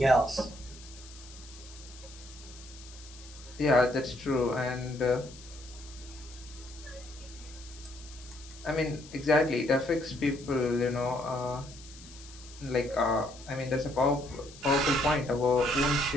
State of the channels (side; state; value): left; noise; hiss, 19 dB below the sound